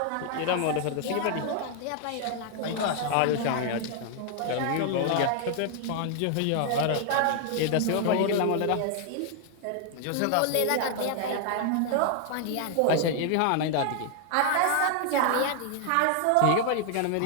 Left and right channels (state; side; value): different; both; correlation 0.00